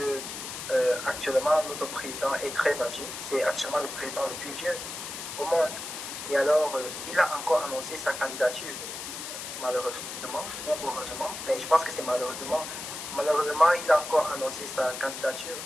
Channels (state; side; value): noise; left; hiss, 8 dB below the sound